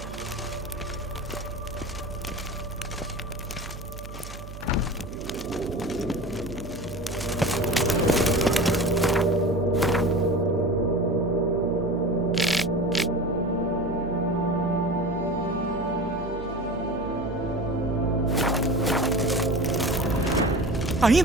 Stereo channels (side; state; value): right; noise; hum, 12 dB below the sound